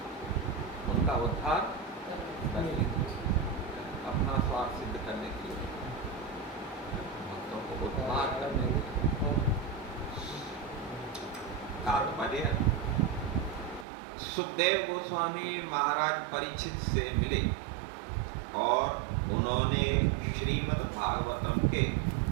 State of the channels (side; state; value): left; drops out; at 13.9 s